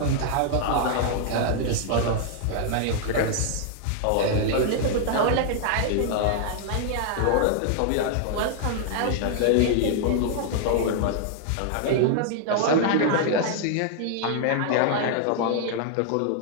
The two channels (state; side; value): different; both; correlation 0.00